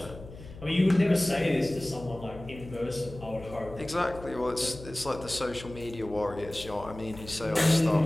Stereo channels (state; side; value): noise; left; hum, 15 dB below the sound